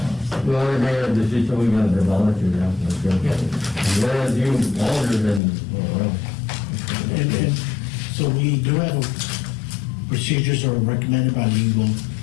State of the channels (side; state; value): right; drops out; at 5.4 s